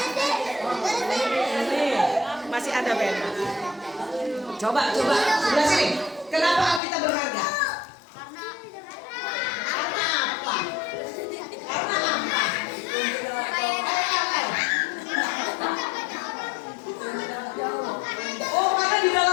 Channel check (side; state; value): right; drops out; at 6.8 s